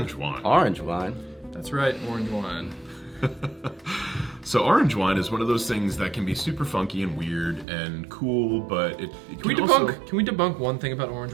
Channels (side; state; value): left; drops out; at 7.7 s